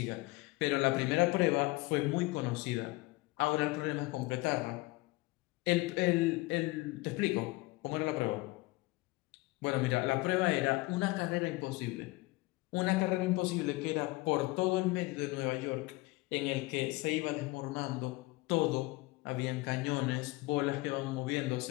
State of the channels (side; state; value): right; quieter; 21.9 dB